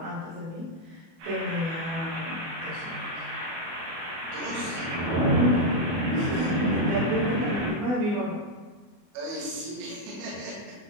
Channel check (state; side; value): late; left; 24 ms